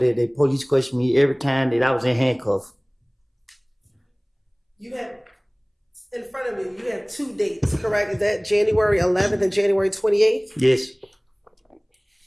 they police questioned me every time that I was in handcuffs. You have, in front of you, you have 2 dates, correct? Is that January 11th and January 28th? Yes.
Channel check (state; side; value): identical; both; correlation 1.00